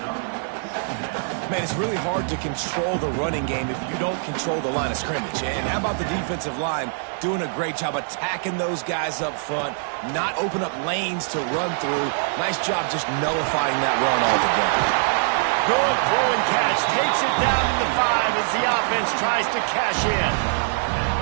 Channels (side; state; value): left; silent; digital silence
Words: Man, it's really hard to control the running game if you don't control the line of scrimmage. And how about the defensive line doing a great job attacking those guys up front, not open up lanes to run through. Nice job just nullifying that run altogether. Good throw and catch. Takes it down to the 5 as the offense tries to cash in.